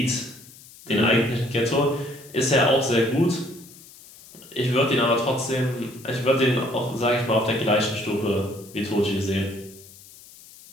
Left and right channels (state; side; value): noise; left; hiss, 21 dB below the sound